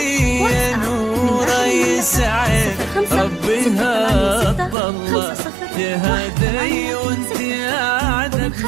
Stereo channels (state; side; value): drops out; left; at 4.8 s